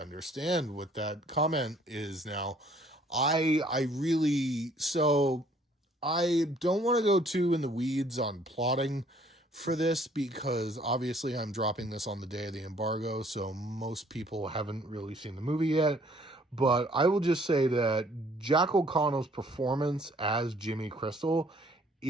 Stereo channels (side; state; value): both; normal; correlation 0.60